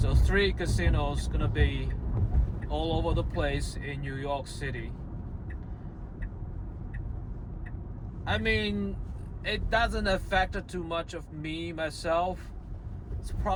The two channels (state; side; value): identical; both; correlation 1.00